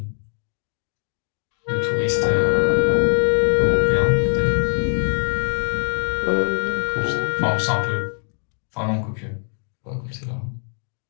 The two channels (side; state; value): right; silent; digital silence